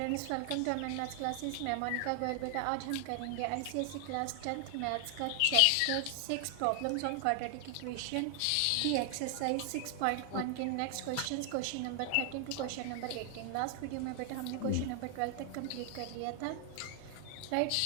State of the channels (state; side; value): different; both; correlation 0.00